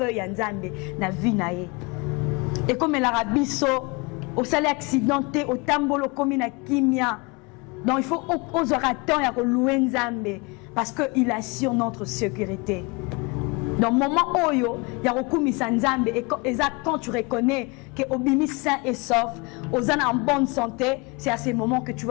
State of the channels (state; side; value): quieter; right; 28.2 dB